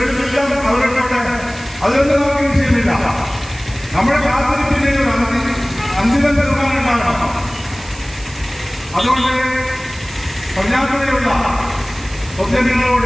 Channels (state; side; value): noise; right; hiss, 18 dB below the sound